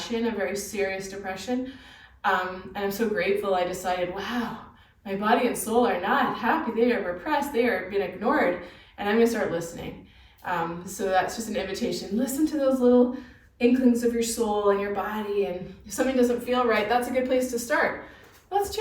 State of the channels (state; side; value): identical; both; correlation 1.00